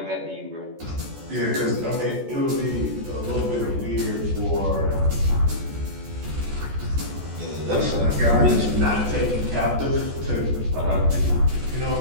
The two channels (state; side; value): late; left; 14 ms